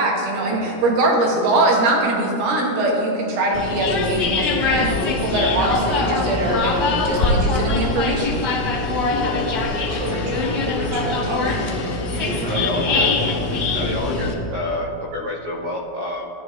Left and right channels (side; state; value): left; late; 17 ms